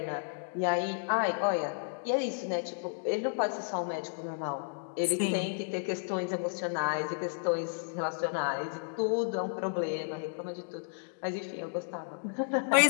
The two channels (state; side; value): silent; right; digital silence